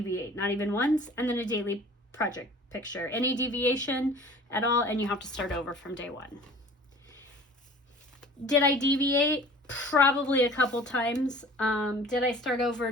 not even once. And then a daily project picture. Any deviation at all, and you have to start over from day 1. Did I deviate? Probably a couple times. Did I start over?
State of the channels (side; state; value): both; normal; correlation 0.46